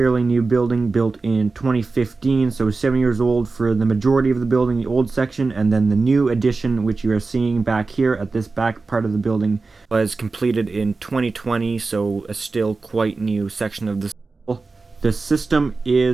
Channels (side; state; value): left; quieter; 3.9 dB